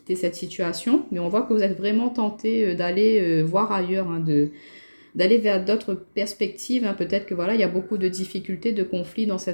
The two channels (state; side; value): inverted; both; correlation -1.00